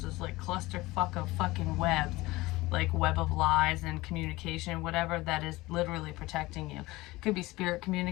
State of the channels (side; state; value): right; quieter; 20.1 dB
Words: this like clusterfuck of fucking webs, like web of lies and communication, whatever, that is literally protecting you. It could be spirit